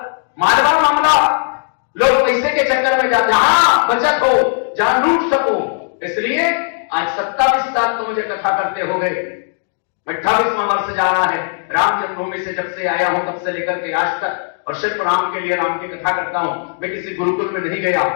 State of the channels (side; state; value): right; silent; digital silence